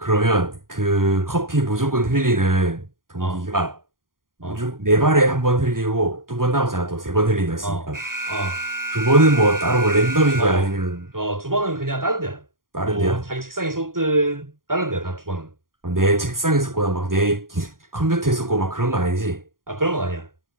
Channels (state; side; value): late; left; 0.91 ms